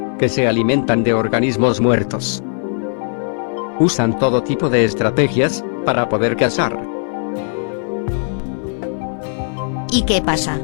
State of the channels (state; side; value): silent; right; digital silence